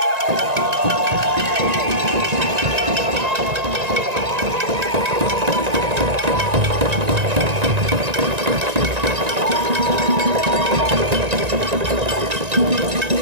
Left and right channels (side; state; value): left; late; 1.9 ms